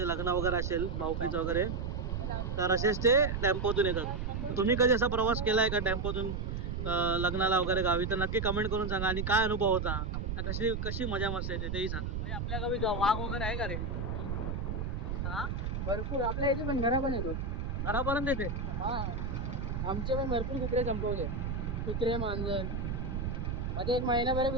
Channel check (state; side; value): noise; right; rumble, 3 dB below the sound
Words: लग्न वगैरे असेल भाऊकीचं वगैरे तर असेच ते टेम्पोतून येतात. तुम्ही कधी असा प्रवास केला आहे का टेम्पोतून लग्नाला वगैरे गावी तर नक्की कमेंट करून सांगा. आणि काय अनुभव होता, कशी कशी मजा मस्त येते तेही सांगा. म्हणजे आपल्या गावी वाघ वगैरे आहे का रे? हा भरपूर आपल्या इथे पण घरा पण येतो. घरापर्यंत येते. हा आमचे पण भरपूर कुत्रे संपवले. कुत्रे मांजर मध्ये 1